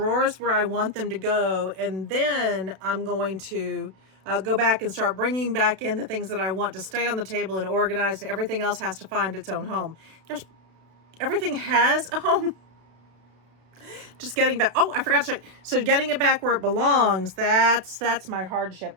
where I want them to go, and then I'm going to go back and start bringing back in the things that I want to stay on the table and organized. Everything else has to find its own home. Everything has a home. just getting back. Oh, I forgot to show you. So getting it back where it belongs, that's my hardship.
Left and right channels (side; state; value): left; late; 32 ms